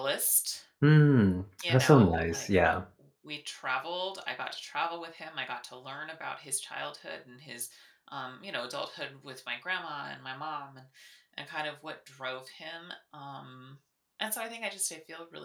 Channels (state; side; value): identical; both; correlation 1.00